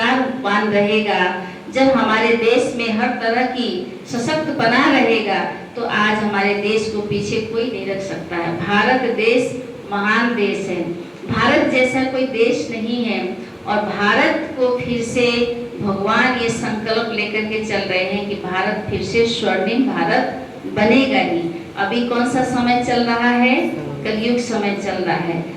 रहेगा, जब हमारे देश में हर तरह की सशक्त बना रहेगा, तो आज हमारे देश को पीछे कोई नहीं रख सकता है। भारत देश महान देश है, भारत जैसा कोई देश नहीं है और भारत को फिर से भगवान ये संकल्प लेकर के चल रहे हैं कि भारत फिर से स्वर्णिम भारत बनेगा ही। अभी कौन सा समय चल रहा है? कलयुग समय चल रहा है।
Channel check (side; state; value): both; identical; correlation 1.00